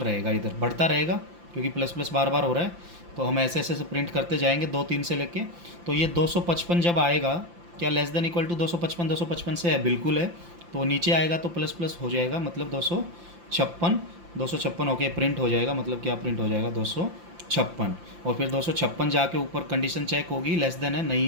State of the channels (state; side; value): late; left; 5.8 ms